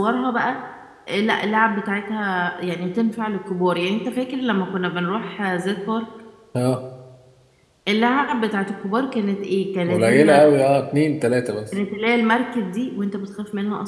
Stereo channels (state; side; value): identical; both; correlation 1.00